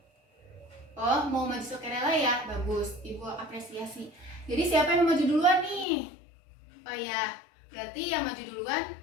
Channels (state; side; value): drops out; right; at 5.9 s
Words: Oh, mau maju sukarela ya, bagus, Ibu apresiasi. Jadi siapa yang mau maju duluan nih? Oh ya, berarti yang maju duluan